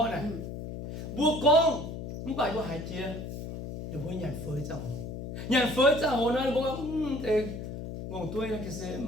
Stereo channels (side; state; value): left; noise; hum, 8 dB below the sound